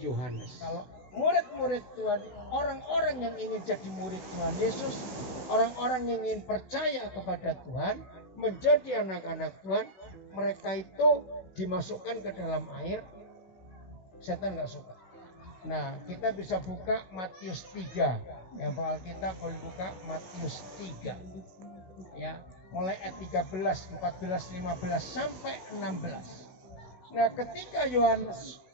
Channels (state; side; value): late; right; 16 ms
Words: Yohanes. Kalau murid-murid Tuhan, orang-orang yang ingin jadi murid Tuhan Yesus, orang-orang yang ingin percaya kepada Tuhan, menjadi anak-anak Tuhan, mereka itu dimasukkan ke dalam air. Setan nggak suka. Nah, kita bisa buka Matius 3. Yang Alkitab boleh buka Matius 3. Ya, mulai ayat 13, 14, 15 sampai 16. Nah, ketika Yohanes